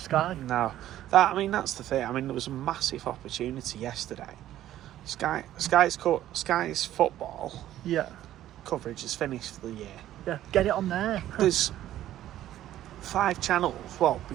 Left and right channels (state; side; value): quieter; left; 13.0 dB